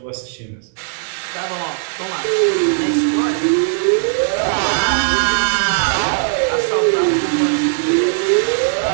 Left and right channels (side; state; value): left; silent; 68 dB below the other